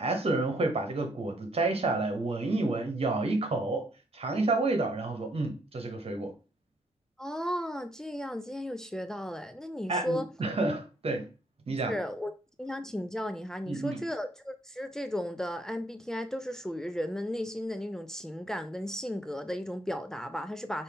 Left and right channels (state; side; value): normal; both; correlation 0.70